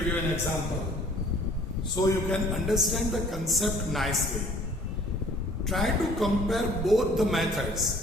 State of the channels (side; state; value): both; normal; correlation 0.54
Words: you an example so you can understand the concept nicely. Try to compare both the